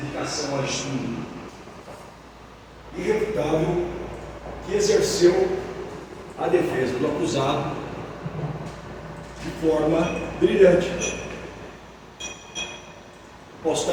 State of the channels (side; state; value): both; identical; correlation 1.00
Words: ao estudo irrefutável, que exerceu a defesa do acusado de forma brilhante. Posso